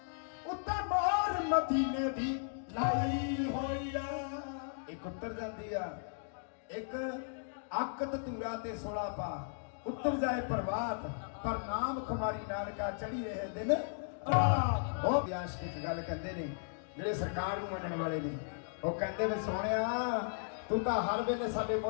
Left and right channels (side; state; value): right; silent; digital silence